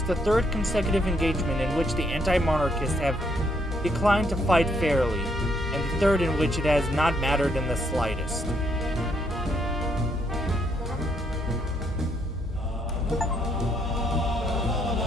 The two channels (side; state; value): both; normal; correlation 0.72